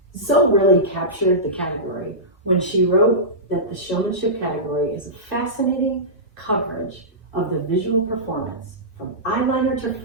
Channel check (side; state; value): both; normal; correlation -0.16